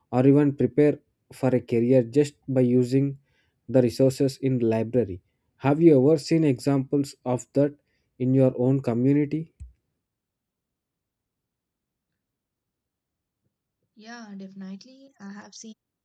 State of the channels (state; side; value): identical; both; correlation 1.00